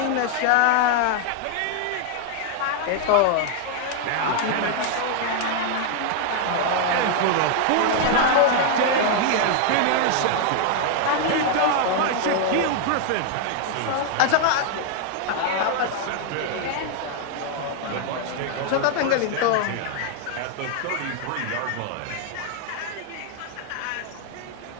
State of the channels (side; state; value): both; different; correlation 0.00